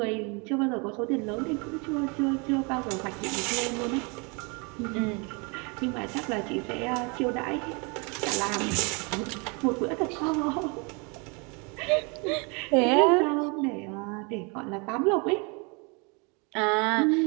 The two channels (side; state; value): left; quieter; 31.6 dB